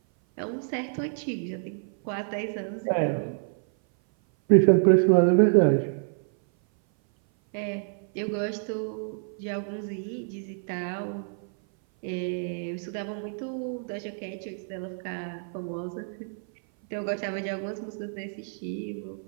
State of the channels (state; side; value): silent; left; 57 dB below the other